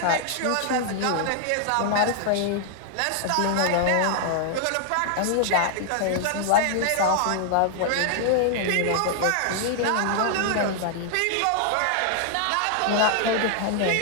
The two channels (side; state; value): both; different; correlation 0.00